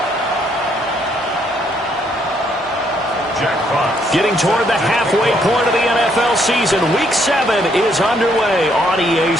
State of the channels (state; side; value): normal; both; correlation 0.70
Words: Getting toward the halfway point of the NFL season, Week 7 is underway on EA